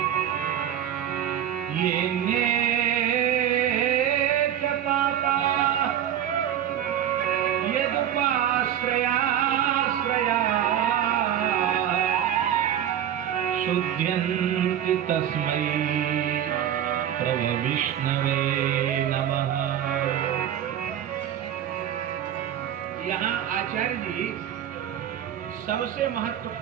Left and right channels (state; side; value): quieter; left; 10.4 dB